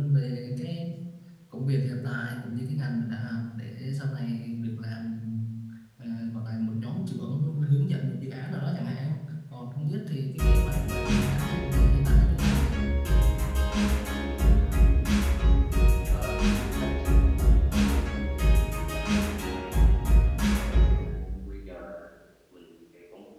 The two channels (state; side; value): identical; both; correlation 1.00